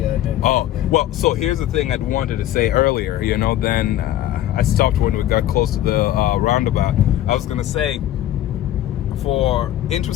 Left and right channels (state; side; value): quieter; right; 12.9 dB